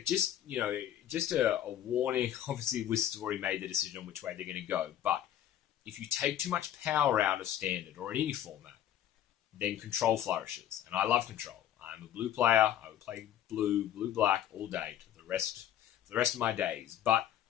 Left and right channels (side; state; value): right; quieter; 11.2 dB